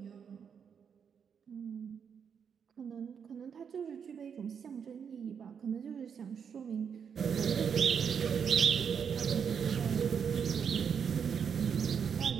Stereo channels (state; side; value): quieter; left; 7.1 dB